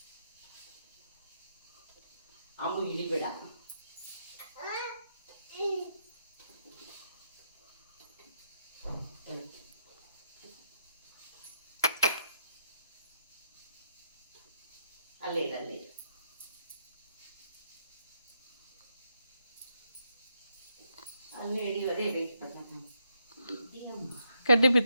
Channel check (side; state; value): both; inverted; correlation -0.79